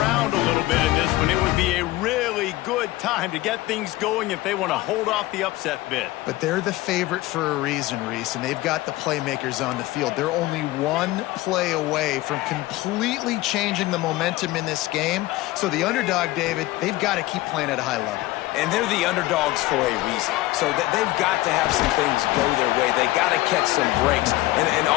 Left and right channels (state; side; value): quieter; right; 18.1 dB